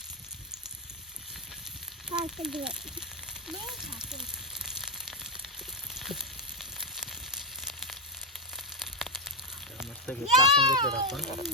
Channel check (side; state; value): both; normal; correlation 0.04